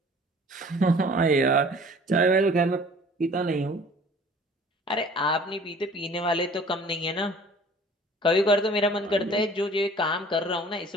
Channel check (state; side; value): normal; both; correlation 0.50